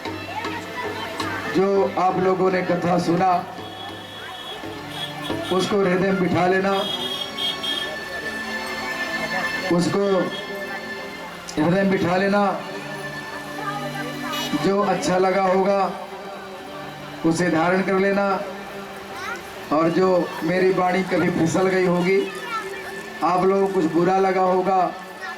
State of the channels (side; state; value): both; identical; correlation 1.00